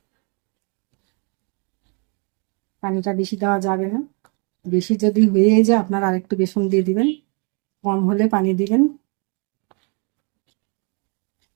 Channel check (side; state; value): left; quieter; 35.9 dB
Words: পানিটা বেশি দেওয়া যাবে না, বেশি যদি হয়ে যায় আপনারা আরেকটু বেসন দিয়ে দিবেন, কম হলে পানি দিবেন।